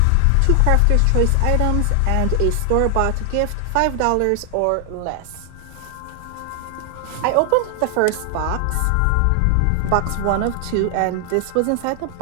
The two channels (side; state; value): both; different; correlation 0.00